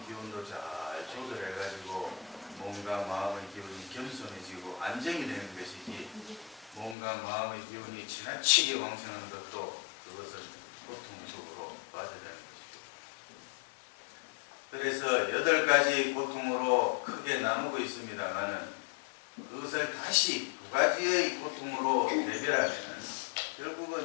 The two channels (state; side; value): drops out; right; at 7.0 s